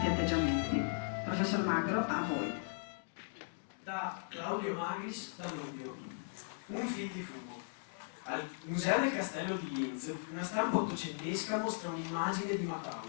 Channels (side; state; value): right; silent; digital silence